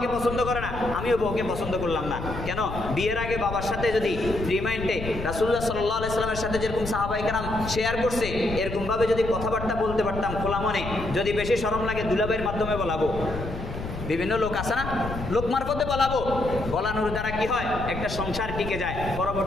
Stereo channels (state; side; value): noise; left; rumble, 7 dB below the sound